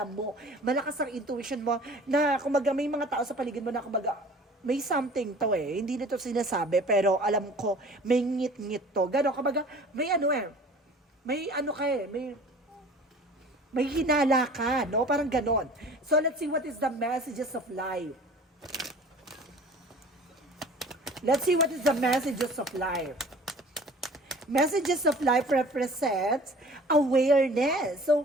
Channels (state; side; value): normal; both; correlation 0.46